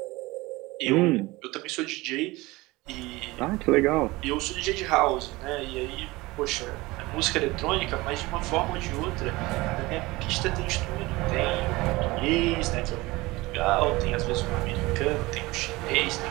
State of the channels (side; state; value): left; quieter; 21.2 dB